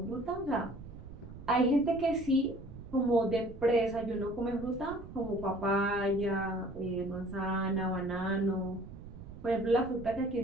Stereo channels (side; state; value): right; noise; rumble, 14 dB below the sound